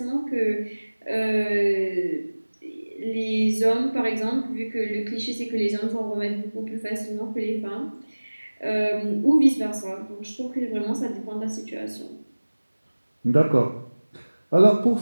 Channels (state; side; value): inverted; both; correlation -1.00